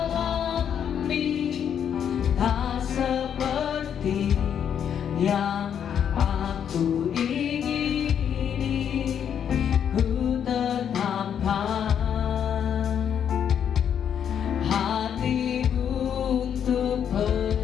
tak seperti yang aku ingini, ku tetapkan hati untuk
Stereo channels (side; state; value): right; quieter; 8.6 dB